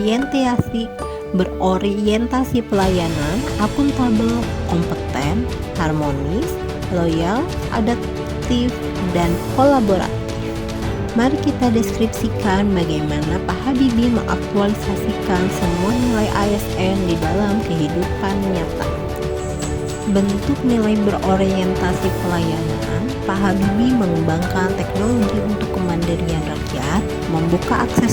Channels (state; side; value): identical; both; correlation 1.00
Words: akuntabel, kompeten, harmonis, loyal, adaptif, dan kolaboratif. Mari kita deskripsikan bagaimana Pak Habibie mengaktualisasikan semua nilai ASN di dalam kehidupan nyata. Bentuk nilai berorientasi pelayanan, Pak Habibie mengembangkan teknologi untuk kemandirian rakyat, membuka